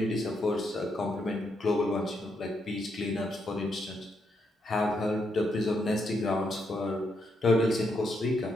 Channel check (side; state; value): both; normal; correlation 0.79